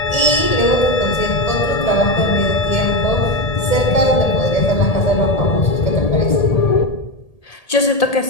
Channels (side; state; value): right; late; 1.8 ms